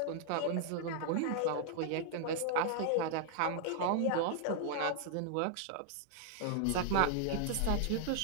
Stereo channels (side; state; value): both; different; correlation 0.00